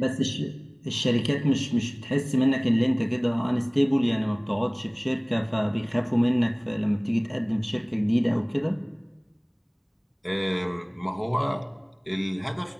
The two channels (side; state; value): both; identical; correlation 1.00